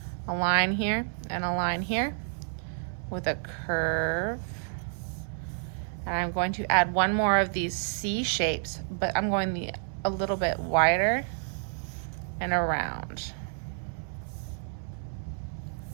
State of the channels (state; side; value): silent; left; 58 dB below the other